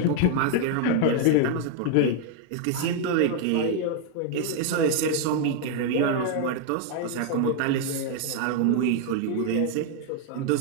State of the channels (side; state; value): both; different; correlation 0.00